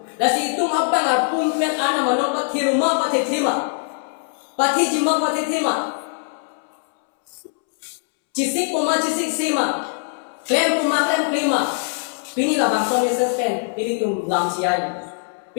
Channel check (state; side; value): silent; right; 65 dB below the other